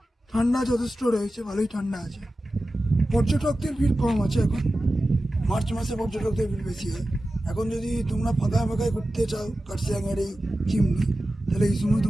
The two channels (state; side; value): normal; both; correlation 0.94